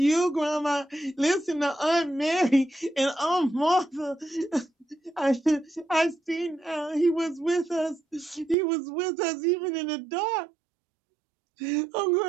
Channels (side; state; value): left; drops out; at 8.6 s